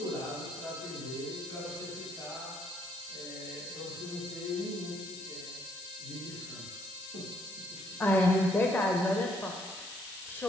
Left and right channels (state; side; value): noise; left; hiss, 11 dB below the sound